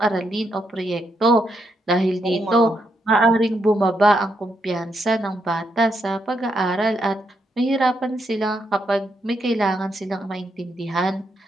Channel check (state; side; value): normal; both; correlation 0.80